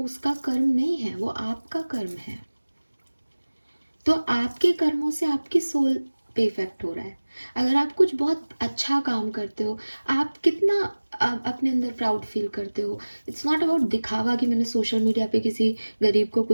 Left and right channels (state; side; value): inverted; both; correlation -1.00